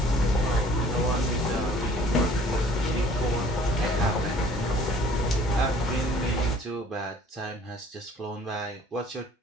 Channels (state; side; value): normal; both; correlation 0.54